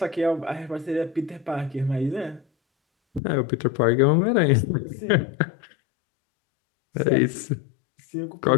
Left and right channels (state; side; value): drops out; right; at 3.2 s